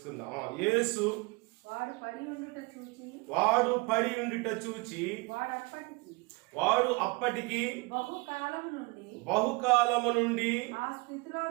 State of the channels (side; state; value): left; quieter; 27.3 dB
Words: యేసు వాడు పడి ఉండుట చూచి వాడు అప్పటికి బహుకాలము నుండి